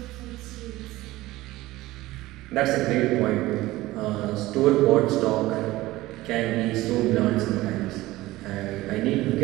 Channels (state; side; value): quieter; left; 17.8 dB